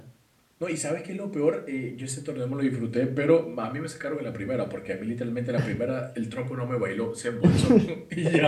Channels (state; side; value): identical; both; correlation 1.00